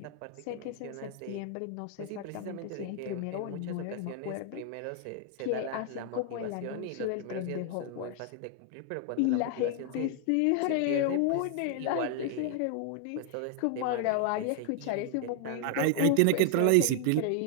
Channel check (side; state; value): both; different; correlation 0.00